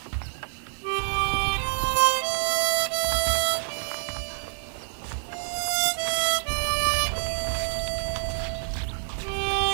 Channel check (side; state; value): left; silent; 60 dB below the other